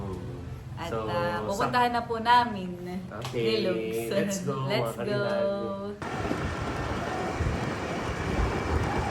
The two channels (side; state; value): both; identical; correlation 1.00